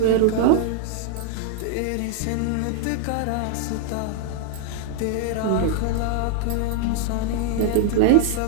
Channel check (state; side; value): different; both; correlation 0.00